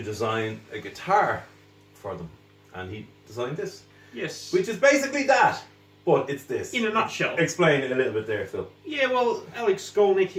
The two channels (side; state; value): both; identical; correlation 1.00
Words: design a guitar for them. And he designed this. Yes. Which is basically that, but it's this. In a nutshell. Explain it a little bit there, Phil. Yeah, well, Alex Skolnick,